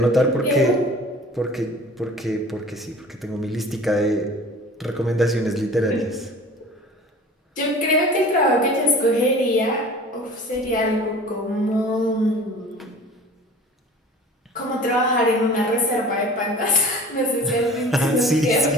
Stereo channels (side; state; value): both; normal; correlation 0.43